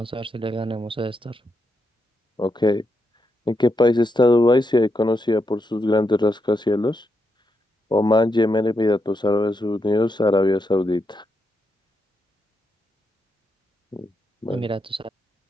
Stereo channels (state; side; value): normal; both; correlation 0.83